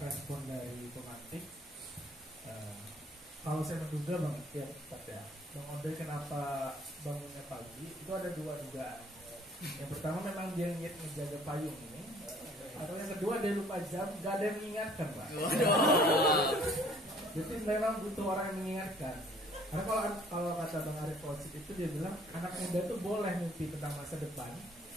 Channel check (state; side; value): normal; both; correlation 0.56